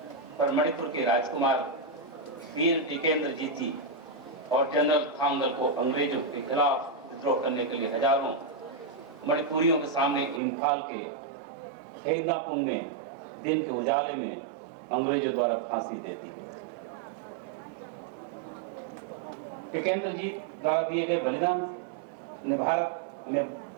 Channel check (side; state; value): left; drops out; at 10.4 s